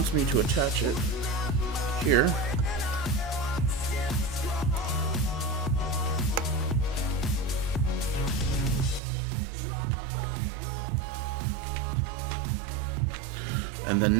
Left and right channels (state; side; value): drops out; left; at 9.0 s